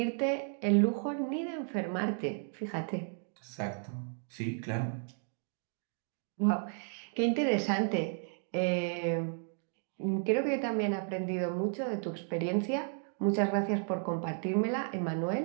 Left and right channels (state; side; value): silent; left; 55 dB below the other